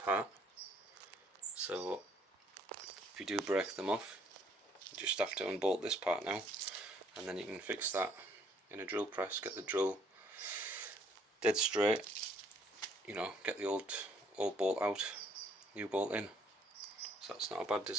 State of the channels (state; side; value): normal; both; correlation 0.64